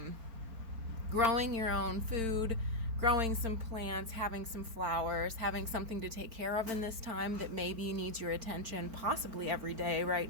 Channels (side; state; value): left; late; 4.4 ms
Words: growing your own food, growing some plants, having some flowers, having something to take care of in this time that maybe needs your attention possibly every day right